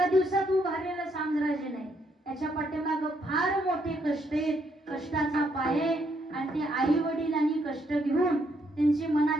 दिवसात उभारलेलं साम्राज्य नाही. याच्या पाठीमागं फार मोठे कष्ट आहेत, कष्टाचा पाये. आणि ते आई वडिलांनी कष्ट घेऊन त्यांची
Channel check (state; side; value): normal; both; correlation 0.73